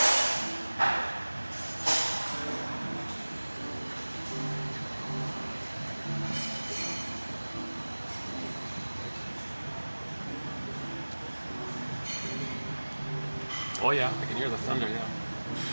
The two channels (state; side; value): inverted; both; correlation -1.00